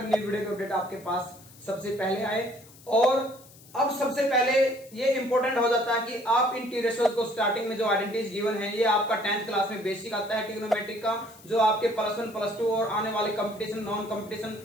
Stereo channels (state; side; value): noise; left; hiss, 23 dB below the sound